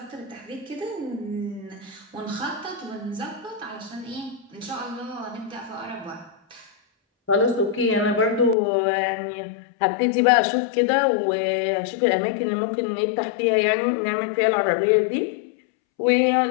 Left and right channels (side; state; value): right; drops out; at 8.6 s